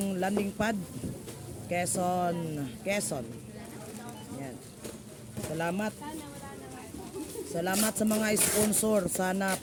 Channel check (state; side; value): identical; both; correlation 1.00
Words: pad Quezon. Yan. Salamat. Salamat sa mga sponsor. Sana